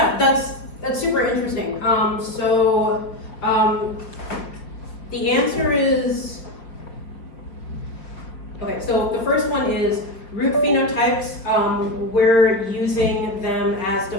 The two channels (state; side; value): late; right; 5.0 ms